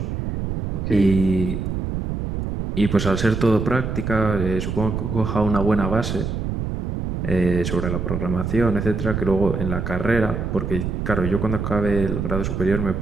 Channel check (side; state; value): right; noise; rumble, 3 dB below the sound